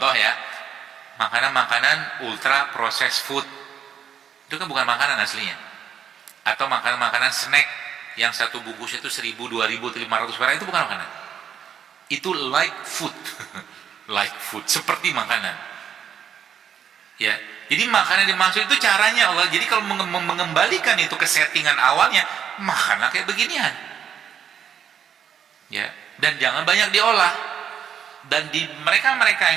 ya, makanan-makanan ultra processed food itu kan bukan makanan aslinya. Atau makanan-makanan snack yang satu bungkus itu 1000, 2000, 500 perak itu bukan makanan. Itu like food. Like food, seperti makanan. Ya, jadi makanan dimaksud itu caranya Allah. Jadi kalau mengembalikan itu ke settingan awalnya, makanlah kayak beginian. Ya, dan jangan banyak diolah. Dan di mereka-mereka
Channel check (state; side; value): quieter; left; 8.3 dB